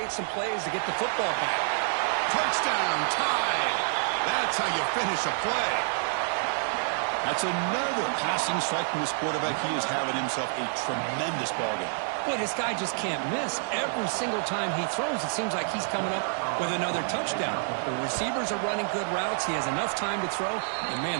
some plays to get the football back. Touchdown, tied. That's how you finish a play. That's another passing strike from this quarterback. He is having himself a tremendous ball game. Boy, this guy just can't miss. Every single time he throws, it seems like he's coming up with another touchdown. The receivers are running good routes. He has enough time to throw. And,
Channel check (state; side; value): silent; left; 59 dB below the other